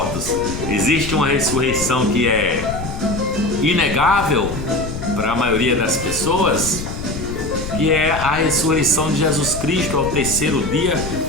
Existe uma ressurreição que é inegável para a maioria das pessoas, que é a ressurreição de Jesus Cristo. Ao terceiro dia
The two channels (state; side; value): noise; left; rumble, 9 dB below the sound